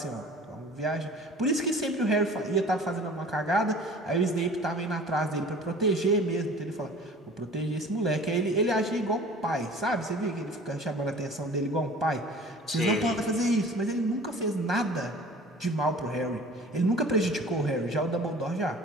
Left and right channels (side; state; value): both; normal; correlation 0.45